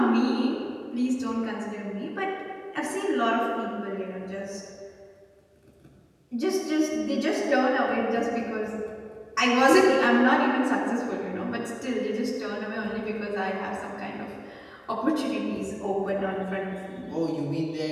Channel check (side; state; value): both; identical; correlation 1.00